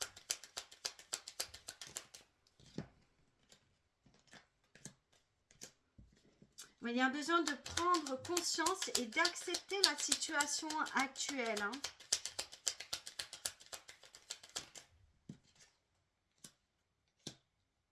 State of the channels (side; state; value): both; identical; correlation 1.00